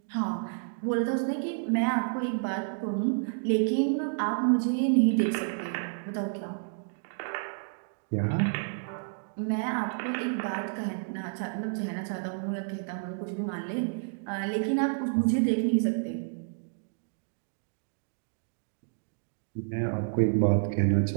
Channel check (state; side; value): silent; left; digital silence